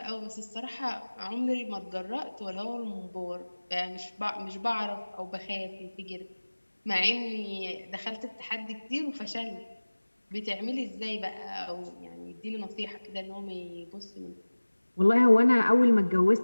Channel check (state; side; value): inverted; both; correlation -1.00